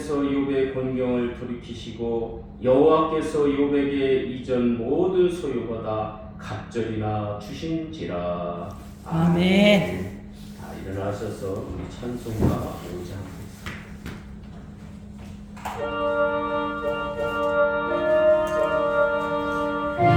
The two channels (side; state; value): both; identical; correlation 1.00